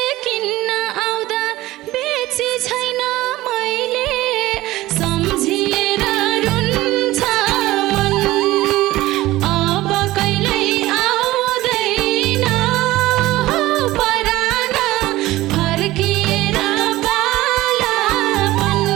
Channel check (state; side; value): quieter; left; 17.3 dB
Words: किन्न आउँदा बेची छैन मैले सम्झिएर रुन्छ मन अब कहिल्यै आउँदैन हो परान फर्किएर बालापन